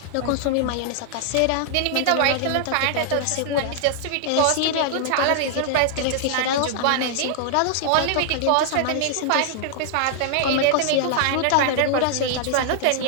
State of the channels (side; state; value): both; different; correlation -0.01